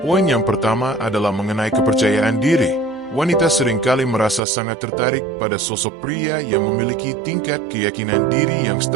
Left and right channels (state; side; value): drops out; left; at 4.4 s